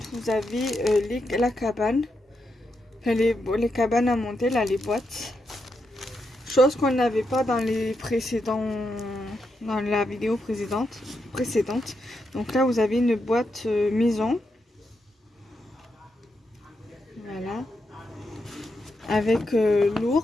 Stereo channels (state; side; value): normal; both; correlation 0.83